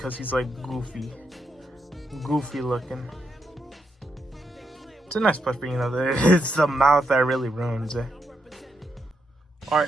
he's like goofy. Goofy looking. It's a nice plush, but you know, it's the mouth that really ruins it.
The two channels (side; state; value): both; normal; correlation 0.81